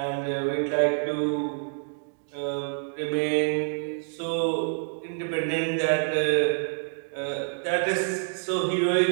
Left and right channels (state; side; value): silent; left; digital silence